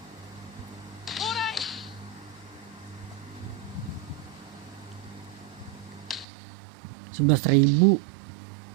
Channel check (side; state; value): left; drops out; at 6.2 s